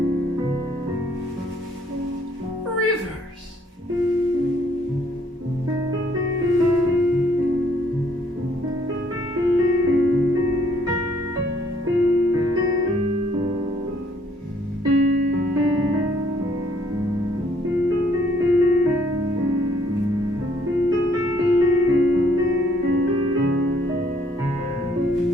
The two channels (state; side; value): normal; both; correlation 0.65